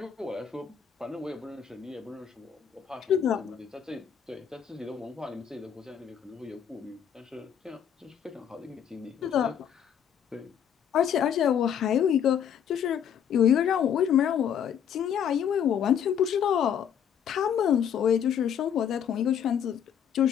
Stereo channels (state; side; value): quieter; right; 8.5 dB